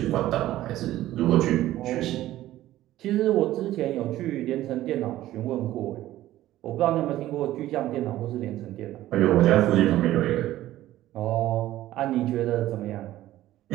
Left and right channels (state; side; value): quieter; left; 14.6 dB